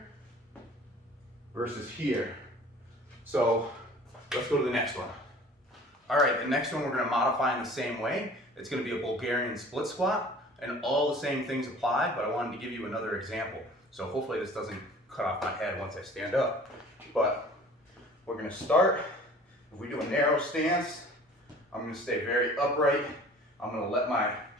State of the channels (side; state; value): both; normal; correlation 0.47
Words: versus here. So let's go to the next one. All right, the next one we're going to modify in the same way. It's going to be a Bulgarian split squat, and all the same things apply, but I wanted to give you another example. So hopefully this doesn't cut off my head once I stand up. But we're going to start, if we do a narrow stance, I'm going to stay very upright. I'm going to let my